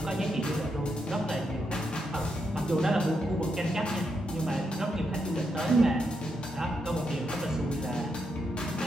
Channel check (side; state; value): both; normal; correlation 0.82